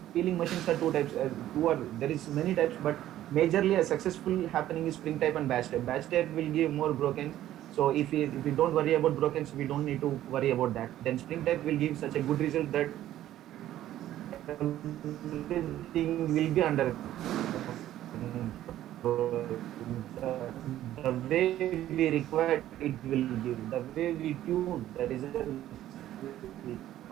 machines are two types. There is many types, but majorly a successful happening is spring type and batch type. Batch type will give more broken. So if we don't worry about brokens, we don't need to worry about that. Then spring type will give such a good result that everything will be under control. The way we require it will give. The way we tune, the results will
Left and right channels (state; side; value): quieter; left; 13.1 dB